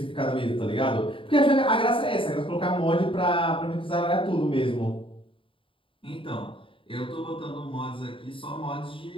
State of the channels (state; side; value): late; right; 0.25 ms